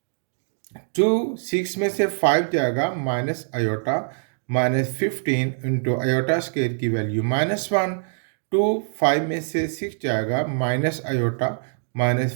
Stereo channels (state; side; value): silent; left; digital silence